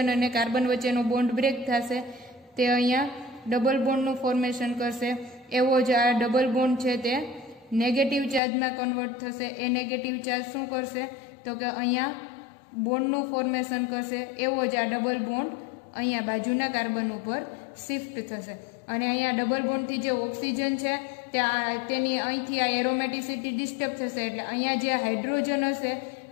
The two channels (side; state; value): right; drops out; at 8.4 s